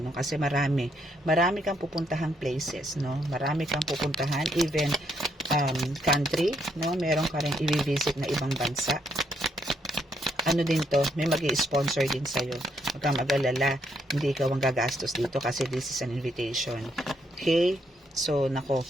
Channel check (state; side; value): normal; both; correlation 0.74